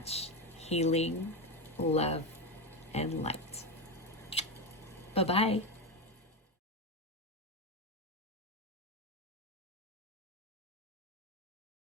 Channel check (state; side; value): normal; both; correlation 0.13